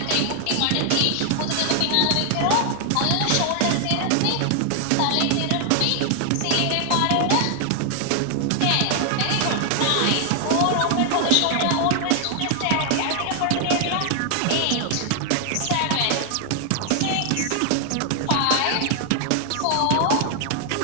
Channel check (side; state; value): both; different; correlation 0.00